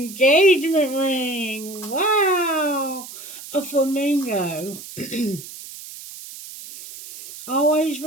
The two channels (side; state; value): right; noise; hiss, 14 dB below the sound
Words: ring, wow, a flamingo. Always